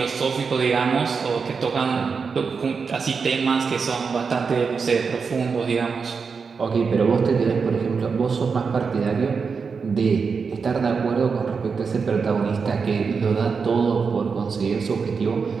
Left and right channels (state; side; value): quieter; left; 5.4 dB